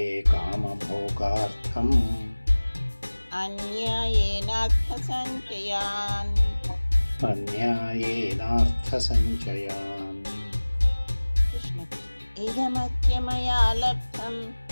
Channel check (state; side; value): inverted; both; correlation -1.00